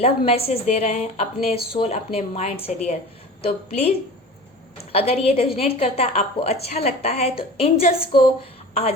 मैसेज दे रहे हैं अपने सोल, अपने माइंड से डियर। तो प्लीज़ अगर ये रेजोनेट करता है, आपको अच्छा लगता है, तो एंजल्स को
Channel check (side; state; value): both; normal; correlation 0.37